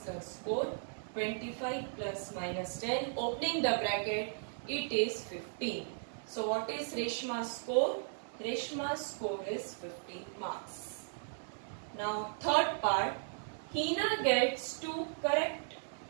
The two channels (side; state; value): left; silent; 53 dB below the other